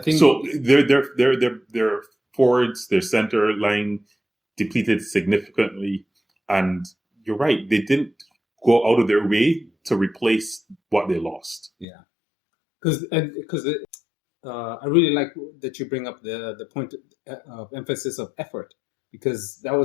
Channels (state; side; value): drops out; right; at 11.9 s